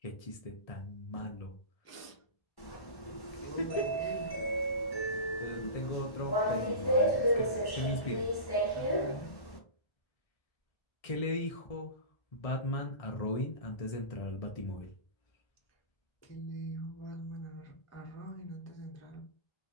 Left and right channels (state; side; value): late; right; 1.1 ms